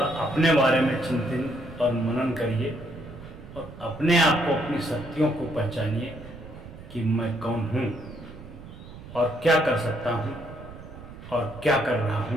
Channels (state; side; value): noise; right; rumble, 15 dB below the sound